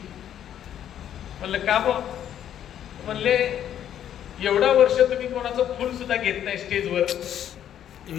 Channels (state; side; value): quieter; right; 10.3 dB